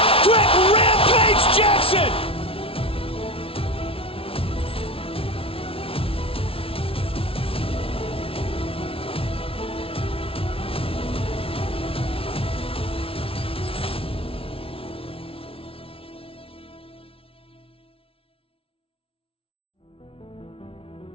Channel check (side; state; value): right; late; 0.26 ms